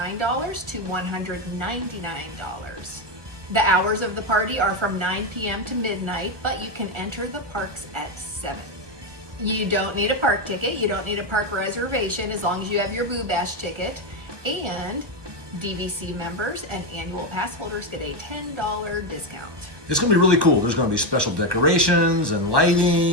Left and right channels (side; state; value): left; late; 1.1 ms